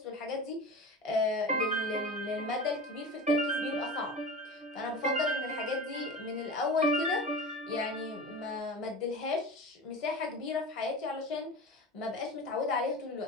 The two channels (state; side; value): normal; both; correlation 0.31